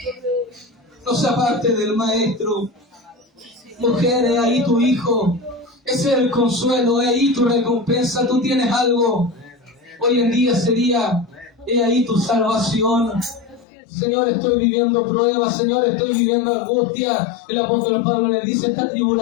no se aparte del Maestro. Mujer, he ahí tu hijo, ese es el consuelo, he ahí tu recompensa. Tú tienes algo. Hoy en día sería: he ahí tu salvación. Señor, estoy viviendo pruebas, Señor, estoy viviendo angustia. El apóstol Pablo le dice: esta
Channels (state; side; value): drops out; right; at 13.7 s